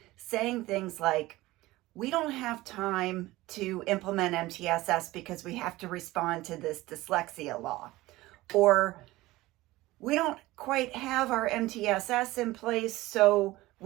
saying things like, we don't have time to implement MTSS because we have to respond to this dyslexia law. Or we don't quite have our MTSS in place, so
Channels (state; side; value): quieter; left; 18.5 dB